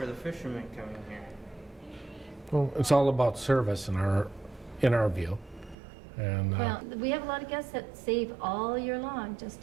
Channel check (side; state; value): left; drops out; at 5.8 s